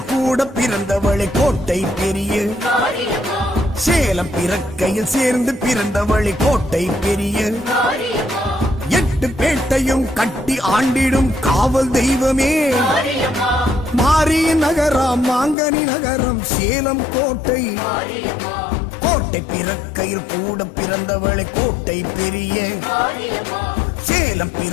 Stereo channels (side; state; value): right; drops out; at 15.6 s